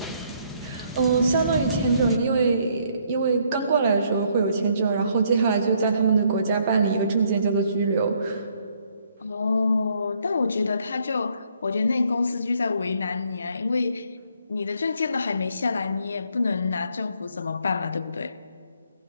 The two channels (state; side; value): inverted; both; correlation -0.68